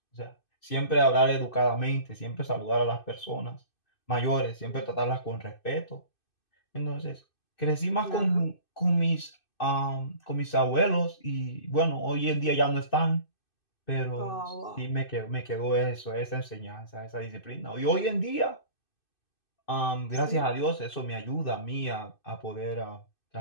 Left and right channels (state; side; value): late; right; 2.6 ms